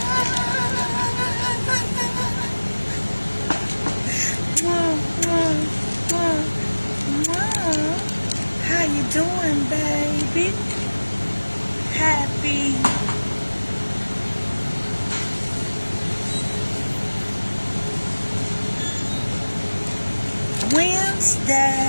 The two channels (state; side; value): inverted; both; correlation -1.00